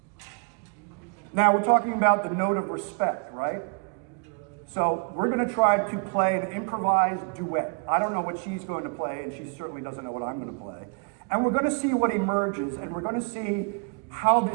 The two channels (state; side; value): quieter; left; 34.9 dB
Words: Now we're talking about the note of respect, right? So we're going to try to play an improvised duet. I don't know what she's going to play, and she certainly doesn't know what I'm going to play. And we're going to see what emerges, and we're going to see how